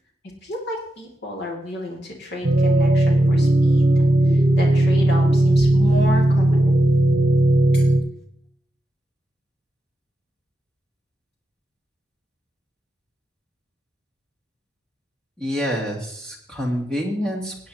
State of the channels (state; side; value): normal; both; correlation 0.87